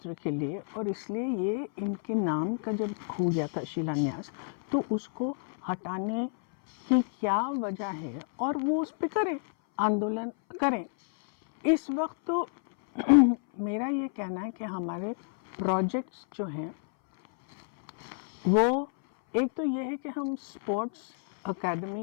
के लिए, और इसलिए ये इनके नाम का जब हो गया था शिलान्यास तो उसको हटाने की क्या वजह है और वो उस पर करें, आंदोलन करें। इस वक्त तो मेरा ये कहना है कि हमारे प्रोजेक्ट्स जो हैं वो एक तो ये है कि हम स्पोर्ट्स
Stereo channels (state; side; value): silent; right; 58 dB below the other